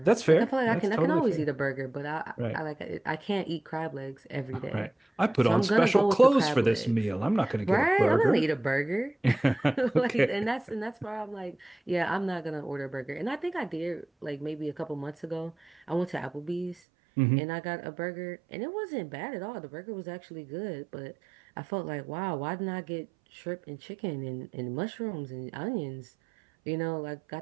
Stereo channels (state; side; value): drops out; left; at 16.8 s